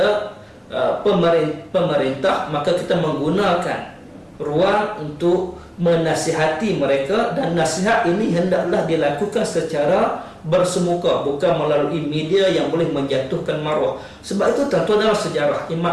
pemerintah, maka kita menggunakan ruang untuk menasihati mereka, dan nasihat ini hendaklah dilakukan secara bersemuka, bukan melalui media yang boleh menjatuhkan maruah. Sebab itu tuan-tuan, dalam sejarah Imam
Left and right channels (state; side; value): identical; both; correlation 1.00